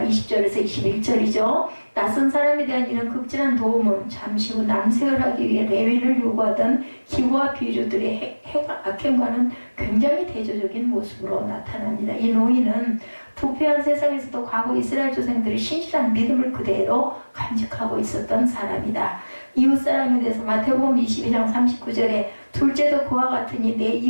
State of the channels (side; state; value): both; inverted; correlation -1.00